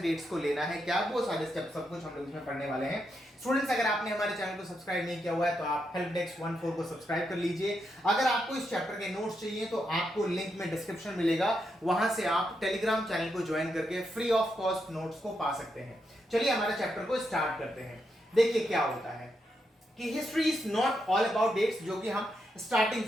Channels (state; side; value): normal; both; correlation 0.83